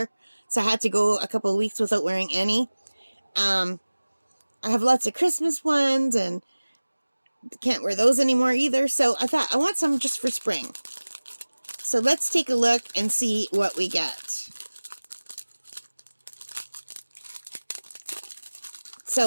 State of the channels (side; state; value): both; inverted; correlation -1.00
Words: so I had to go a couple of weeks without wearing any. I have lots of Christmas ones, and can't wear those anymore either, so I thought I want some just for spring. So let's take a look and see what we get.